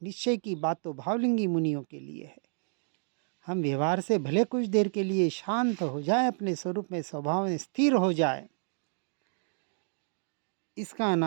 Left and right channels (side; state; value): left; silent; digital silence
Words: निश्चय की बात तो भावलिंगी मुनियों के लिए है। हम व्यवहार से भले कुछ देर के लिए शांत हो जाए, अपने स्वरूप में, स्वभाव में स्थिर हो जाए, इसका